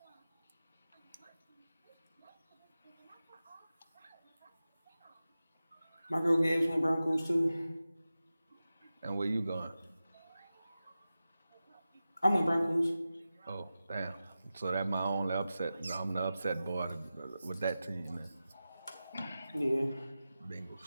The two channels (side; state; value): both; inverted; correlation -0.94